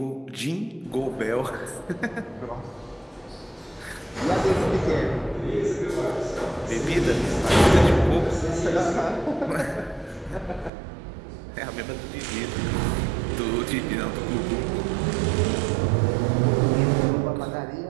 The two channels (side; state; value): left; drops out; at 10.7 s